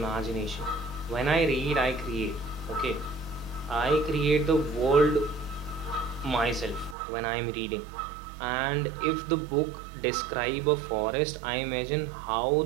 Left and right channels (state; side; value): drops out; left; at 7.0 s